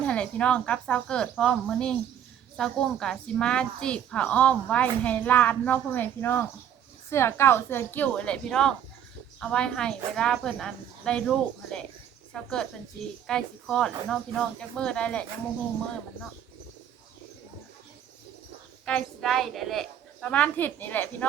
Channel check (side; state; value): left; quieter; 9.7 dB